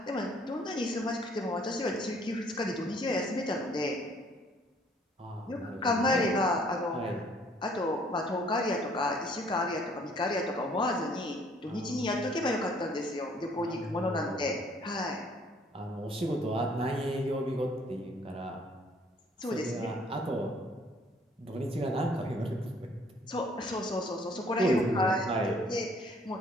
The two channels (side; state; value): both; normal; correlation 0.60